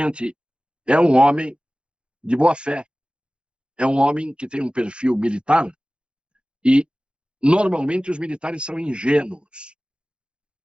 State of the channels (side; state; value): left; late; 0.055 ms